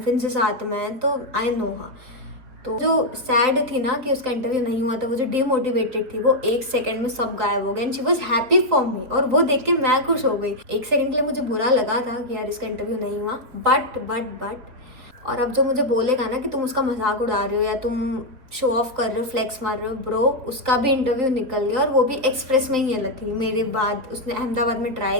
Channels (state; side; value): late; left; 4.1 ms